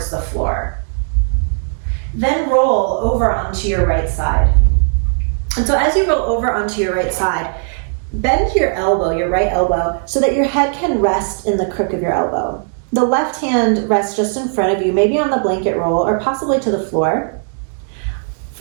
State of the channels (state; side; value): silent; left; digital silence